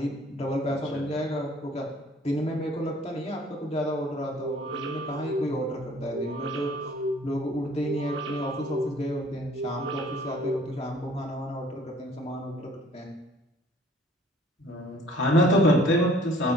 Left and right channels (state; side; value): normal; both; correlation 0.55